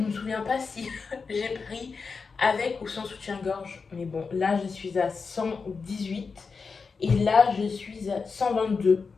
me souviens pas si j'ai pris avec ou sans soutien-gorge. Mais bon, là, je suis à 118 et là, je suis à 122.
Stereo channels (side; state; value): right; quieter; 4.9 dB